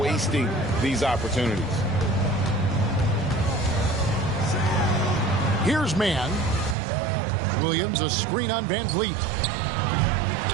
these opportunities. Here's Mann. Williams, a screen on Van Vliet.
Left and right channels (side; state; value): left; drops out; at 6.8 s